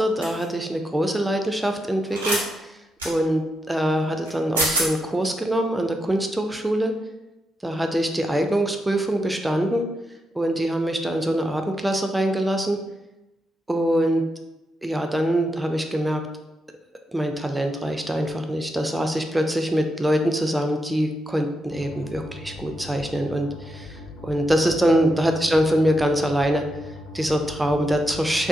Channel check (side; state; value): both; normal; correlation 0.84